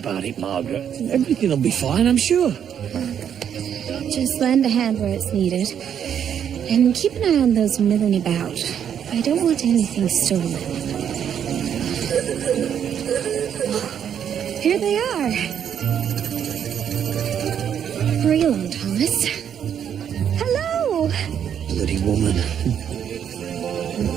it, Margaret. Everything will be fine, I'm sure. Just lend a hand where it's needed. And keep an eye on those milling about. I don't want anything stolen. Here they are. Hurry along, Thomas. Hello! Bloody woman.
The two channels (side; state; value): left; quieter; 8.8 dB